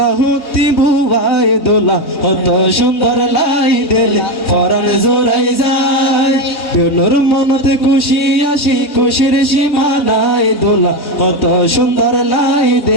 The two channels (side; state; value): right; late; 3.2 ms